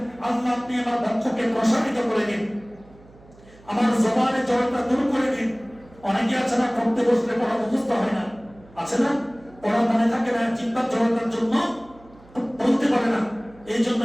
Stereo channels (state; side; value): noise; right; hum, 25 dB below the sound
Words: আল্লাহ আপনি আমার বক্ষকে প্রসারিত করে দিন, আমার জবানে জড়তা দূর করে দিন। অনেকে আছে না পড়তে বসলে পড়া মুখস্থ হয় না, আছে না, পড়া মনে থাকে না, চিন্তার জড়তার জন্য বলতে পারে না, এই জন্য